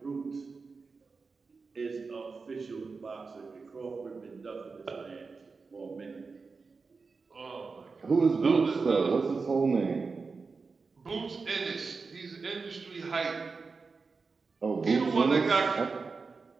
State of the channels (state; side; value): quieter; left; 4.5 dB